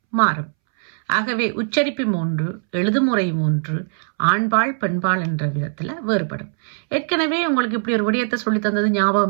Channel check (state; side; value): silent; left; 65 dB below the other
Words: மாறும். ஆகவே உச்சரிப்பும் ஒன்று, எழுதுமுறையும் ஒன்று, ஆண்பால் பெண்பால் என்ற விதத்தில் வேறுபடும். ஏற்கனவே உங்களுக்கு இப்படி ஒரு விடயத்தை சொல்லி தந்தது